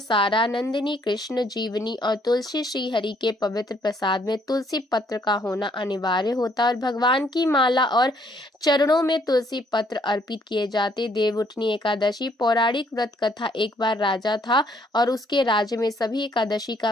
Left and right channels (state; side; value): normal; both; correlation 0.67